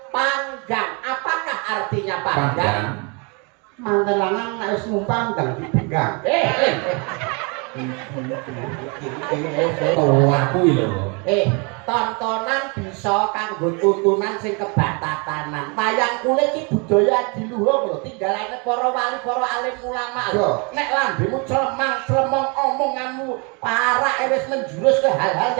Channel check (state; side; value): quieter; left; 32.5 dB